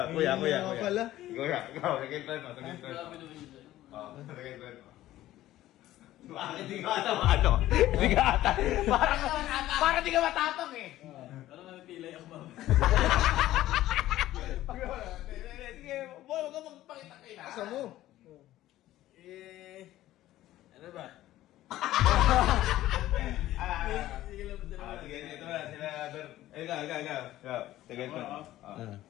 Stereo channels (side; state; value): right; quieter; 14.7 dB